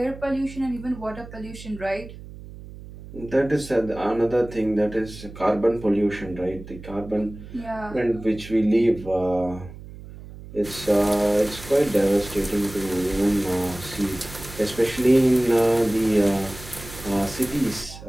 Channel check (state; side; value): noise; right; hum, 15 dB below the sound